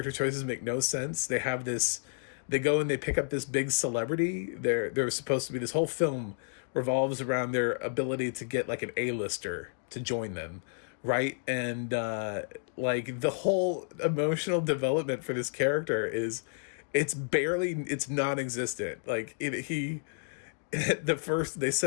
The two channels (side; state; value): right; silent; digital silence